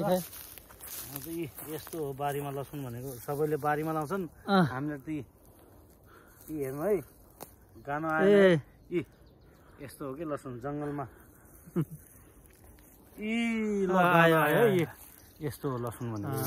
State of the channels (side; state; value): both; identical; correlation 1.00